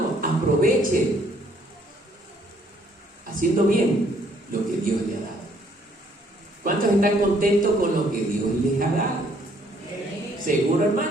aproveche haciendo bien lo que Dios le ha dado. ¿Cuántos están contentos con lo que Dios les ha dado? ¿Seguro,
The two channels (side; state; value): both; normal; correlation 0.65